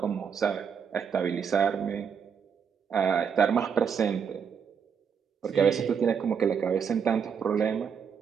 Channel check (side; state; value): left; quieter; 6.9 dB